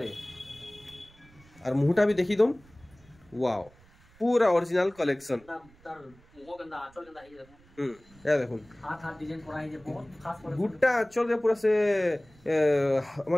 और मुहटा भी देखि दम वाओ पूरा ओरिजिनल कलेक्शन तार मुहो गंदा आचल गंदा हे देखुन या देखुन हाथ डिजाइन करा हे जे बहुत खास करे गुट्टा आचल रे पूरा से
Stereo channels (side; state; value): right; noise; rumble, 27 dB below the sound